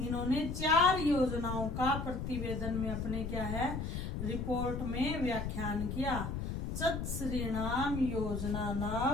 4 योजनाओं का प्रतिवेदन में अपने क्या है रिपोर्ट में व्याख्यान किया। चतुस्रीणाम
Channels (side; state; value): left; noise; rumble, 4 dB below the sound